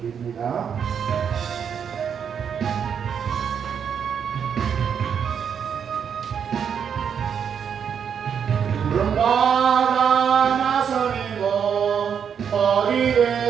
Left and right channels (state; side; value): quieter; left; 7.5 dB